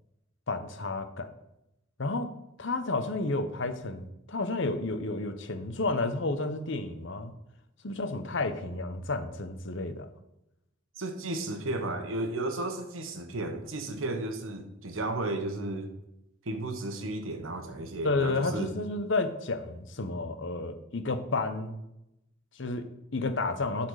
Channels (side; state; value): both; normal; correlation 0.06